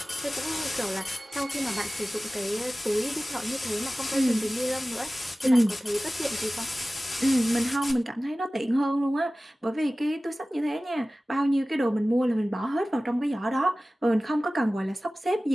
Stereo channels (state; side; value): normal; both; correlation 0.97